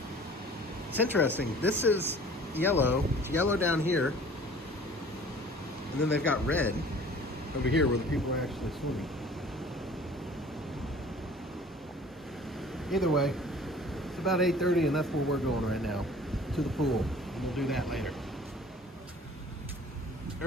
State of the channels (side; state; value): both; normal; correlation 0.48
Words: It's interesting. This is yellow. It's yellow down here. And then they've got red over here where the people are actually swimming. Either way, it's about 8:30 and that's where we're going right now. To the pool. And we'll do that later.